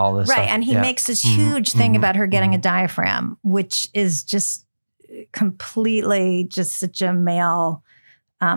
this stuff. Right. And he makes this huge thing about her getting a diaphragm, which is just completely just such a male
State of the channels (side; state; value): both; inverted; correlation -1.00